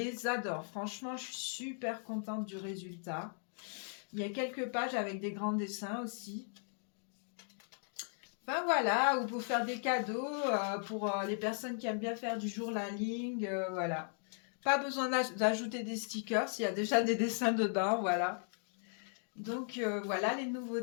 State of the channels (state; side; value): silent; right; 53 dB below the other